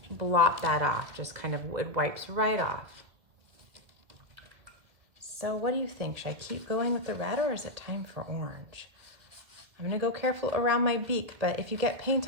blot that off. Just kind of, it wipes right off. So what do you think? Should I keep going with the red or is it time for orange? I'm gonna go careful around my beak, but if you get paint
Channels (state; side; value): late; left; 2.3 ms